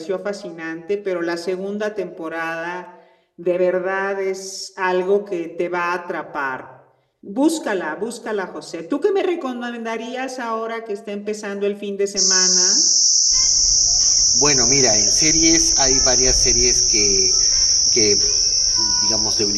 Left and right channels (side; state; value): both; identical; correlation 1.00